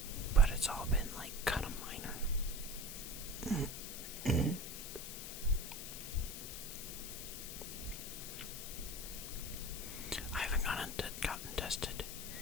but it's all been like kind of minor. I haven't gotten tested,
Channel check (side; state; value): left; noise; hiss, 7 dB below the sound